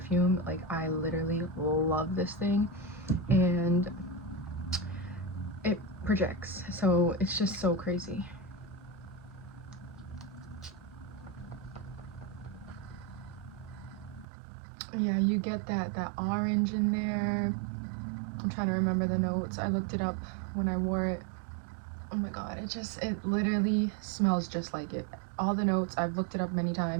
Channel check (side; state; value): left; drops out; at 14.2 s